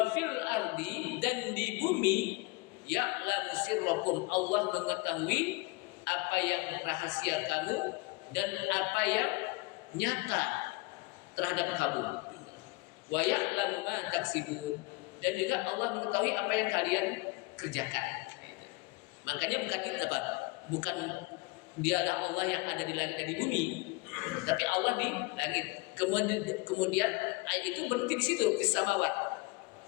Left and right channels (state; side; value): quieter; right; 24.1 dB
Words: fil ardi, dan di bumi ya'lamu sirrakum, Allah mengetahui apa yang rahasia kamu dan apa yang nyata terhadap kamu. Wa ya'lamu ma taksibun, dan juga Allah mengetahui apa yang kalian kerjakan. Makanya bukan itu apa? Bukan dialah Allah yang ada di langit dan di bumi, tapi Allah di langit. Kemudian ayat itu berhenti di situ, fis samawat.